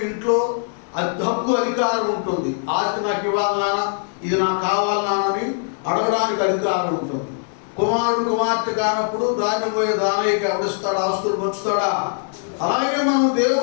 ఇంట్లో హక్కు, అధికారం ఉంటుంది. ఆస్తి నాకు ఇవ్వాలి నాన్న, ఇది నాకు కావాలి నాన్నని అడగడానికి అధికారం ఉంటుంది. కుమారుడు కుమార్తె కానప్పుడు దాన్ని పోయే దానయ్యకి ఎవడిస్తాడా, ఆస్తులు పంచుతాడా? అలాగే మనం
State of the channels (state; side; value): silent; right; 59 dB below the other